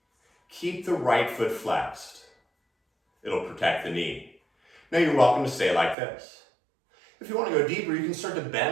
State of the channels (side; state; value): left; drops out; at 6.0 s